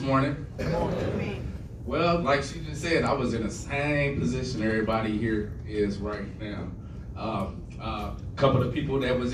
Well, like she just said, I was in the same position everybody here is right now. A couple of people that was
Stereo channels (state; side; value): identical; both; correlation 1.00